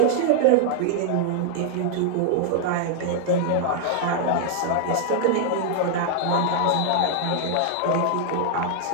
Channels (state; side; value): different; both; correlation -0.01